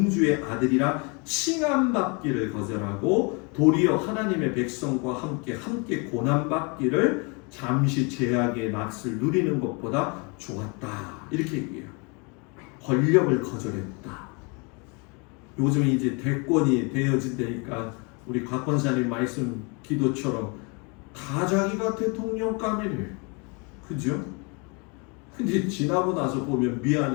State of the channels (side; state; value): right; quieter; 31.9 dB